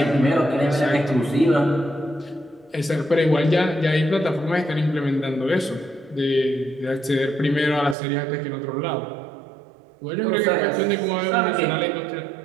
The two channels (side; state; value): left; drops out; at 8.0 s